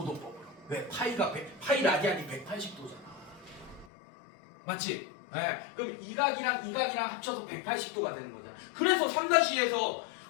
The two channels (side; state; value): right; drops out; at 3.9 s